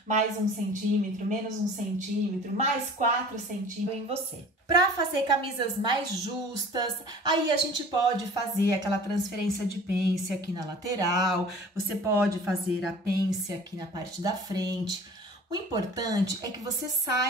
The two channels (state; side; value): normal; both; correlation 0.44